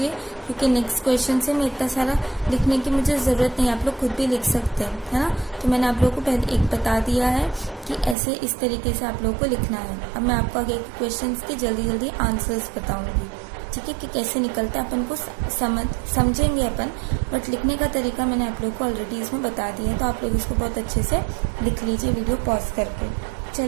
क्योंकि नेक्स्ट क्वेश्चन से मैं इतना सारा लिखने की मुझे ज़रूरत नहीं, आप लोग खुद भी लिख सकते हैं, है ना। तो मैंने आप लोगों को पहले एक बता दिया है कि ऐसे इस तरीके से आप लोगों को लिखना है। अब मैं आपको आगे के क्वेश्चंस के जल्दी आंसर्स बताऊंगी, ठीक है, कि कैसे निकलता है अपन को समझेंगे अपन, बट लिखने का तरीका मैंने आप लोगों को ऑलरेडी इसमें बता दिया है। तो आप लोग इसको बहुत अच्छे से लिख लीजिए वीडियो पॉज करके।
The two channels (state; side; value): drops out; left; at 8.2 s